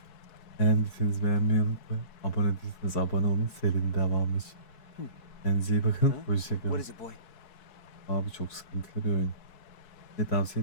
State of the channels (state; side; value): late; right; 4.7 ms